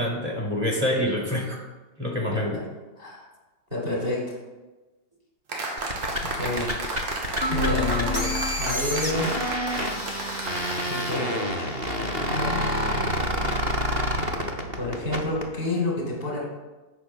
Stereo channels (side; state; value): left; late; 2.8 ms